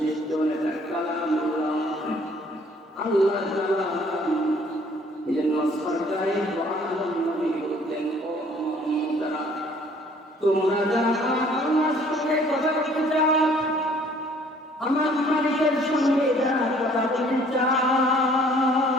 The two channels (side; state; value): both; normal; correlation 0.57